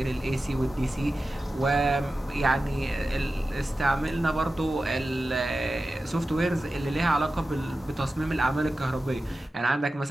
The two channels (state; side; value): normal; both; correlation 0.94